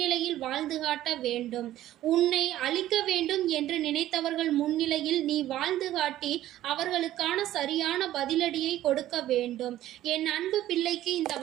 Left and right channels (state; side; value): quieter; left; 13.7 dB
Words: வாழ்ந்து காட்ட வேண்டும். உன்னை அழிக்க வேண்டும் என்று நினைத்தவர்கள் முன்னிலையில் நீ வாழ்ந்து காட்டி அவர்களுக்கான சரியான பதிலடியை கொடுக்க வேண்டும். என் அன்பு பிள்ளைக்கு இந்த